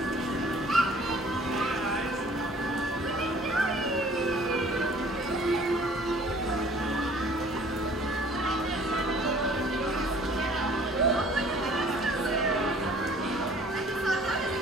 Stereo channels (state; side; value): normal; both; correlation 0.53